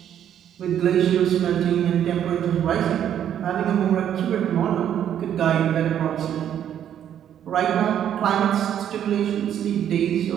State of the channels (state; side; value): quieter; left; 9.9 dB